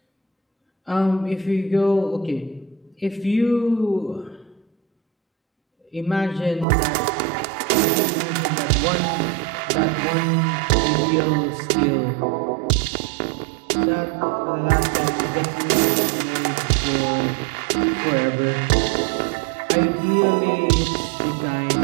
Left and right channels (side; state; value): left; drops out; at 6.7 s